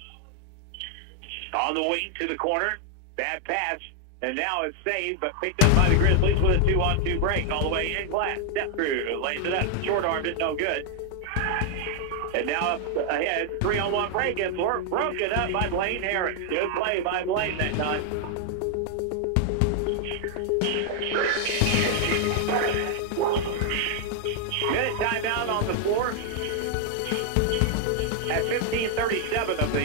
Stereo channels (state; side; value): different; both; correlation 0.00